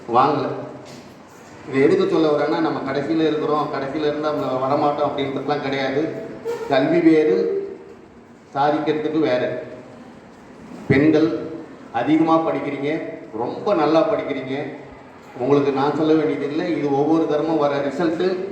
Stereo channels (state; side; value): identical; both; correlation 1.00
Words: வாங்கலை. இது எதுக்கு சொல்ல வரேன்னா, நம்ம கடைசியில் இருக்கிறோம், கடைசியில் இருந்தால் நம்ம வரமாட்டோம் அப்படின்றதுலாம் கிடையாது. கல்வி வேறு, சாதிக்கிறதுக்கு வேறு. பெண்கள் அதிகமாக படிக்கிறீங்க, ரொம்ப நல்லா படிக்கிறீங்க. உங்களுக்கு நான் சொல்ல வேண்டியதில்லை, இது ஒவ்வொரு தரமும் வர ரிசல்ட்டு